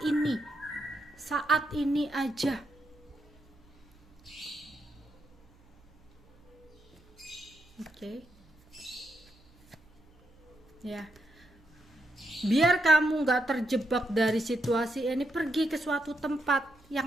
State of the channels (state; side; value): noise; right; hum, 29 dB below the sound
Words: ini aja. Oke. Ya, biar kamu nggak terjebak dari situasi ini, pergi ke suatu tempat